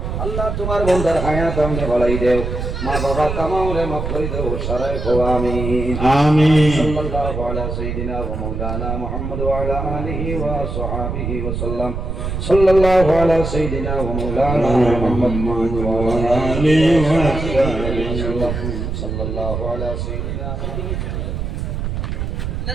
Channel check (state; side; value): noise; right; rumble, 4 dB below the sound